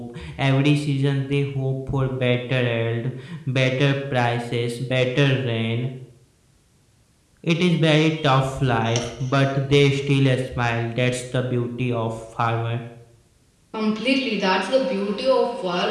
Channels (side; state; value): both; identical; correlation 1.00